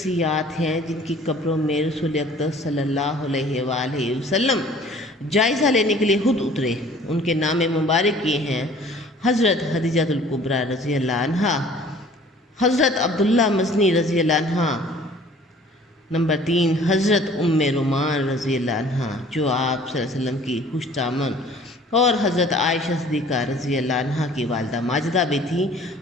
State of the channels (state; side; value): normal; both; correlation 0.51